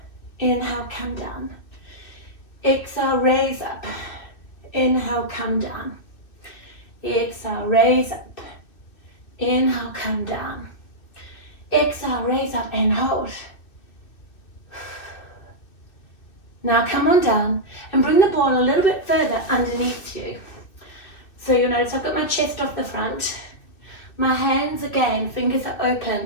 Inhale, come down. Exhale, raise up. Inhale, come down. Exhale, raise up. Inhale, come down. Exhale, raise up and hold. Now come on down and bring the ball a little bit further underneath you. So you'll notice I've got my chest off the front. My hands again, fingers are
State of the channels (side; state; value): right; late; 2.6 ms